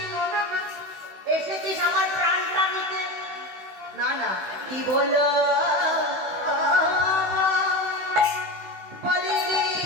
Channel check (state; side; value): late; left; 16 ms